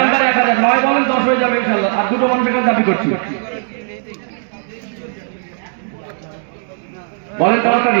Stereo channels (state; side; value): silent; left; 68 dB below the other